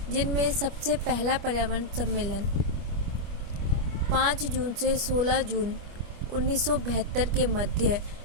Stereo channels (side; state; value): left; late; 25 ms